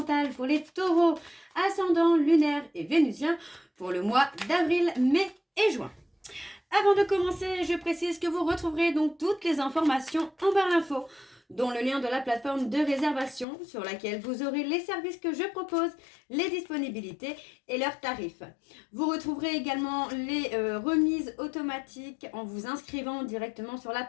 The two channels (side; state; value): right; drops out; at 13.5 s